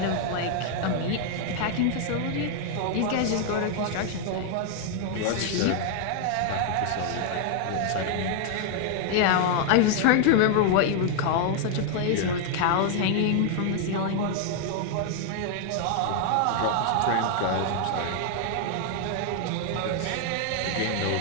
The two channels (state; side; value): different; both; correlation 0.00